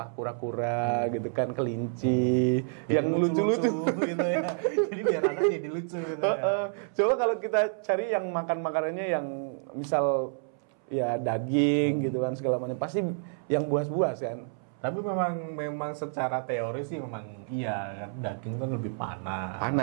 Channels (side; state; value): left; silent; 59 dB below the other